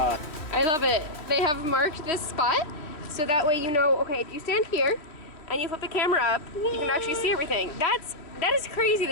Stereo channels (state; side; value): late; right; 3.1 ms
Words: love it. They have marked this spot so that way you know, okay, if you stand here and you flip the camera up, you can actually see everything. That is crazy.